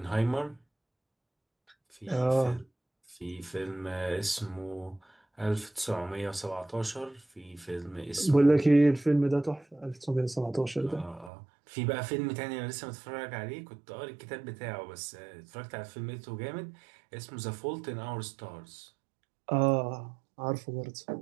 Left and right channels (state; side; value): drops out; left; at 11.3 s